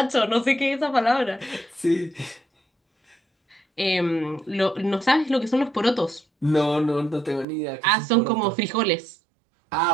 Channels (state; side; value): drops out; left; at 7.5 s